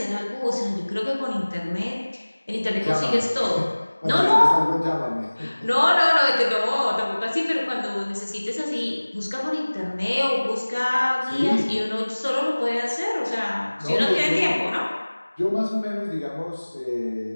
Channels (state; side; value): inverted; both; correlation -1.00